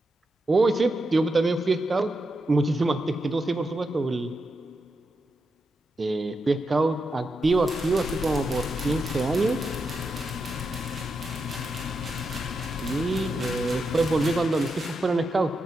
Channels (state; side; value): normal; both; correlation 0.86